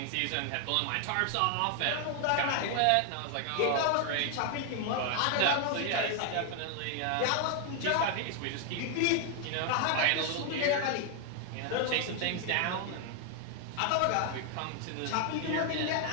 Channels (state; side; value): different; both; correlation 0.00